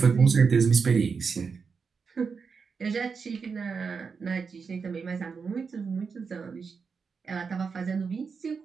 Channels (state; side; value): quieter; left; 5.5 dB